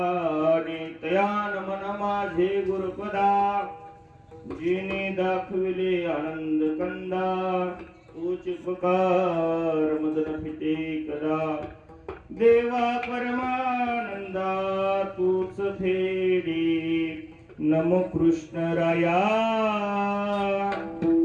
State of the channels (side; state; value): both; identical; correlation 1.00